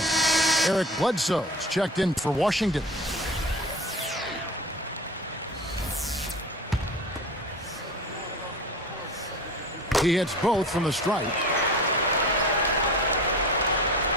Eric Bledsoe's checked in for Washington. He hits both from the stripe.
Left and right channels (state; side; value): normal; both; correlation 0.36